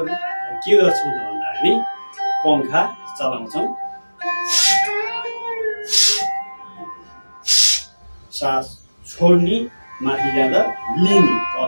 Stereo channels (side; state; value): both; inverted; correlation -1.00